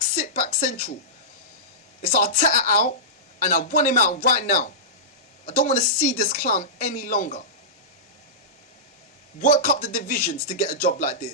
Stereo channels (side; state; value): both; normal; correlation -0.17